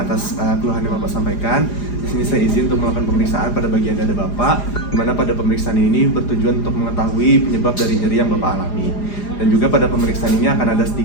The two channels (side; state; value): right; late; 4.9 ms